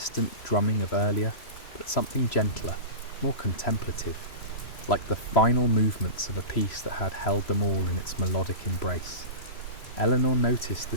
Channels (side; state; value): right; late; 3.0 ms